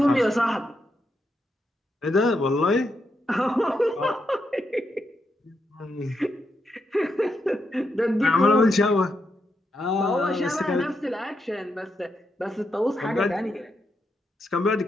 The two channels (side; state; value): both; normal; correlation 0.82